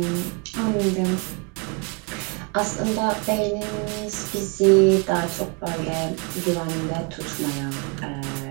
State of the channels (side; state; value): left; quieter; 33.3 dB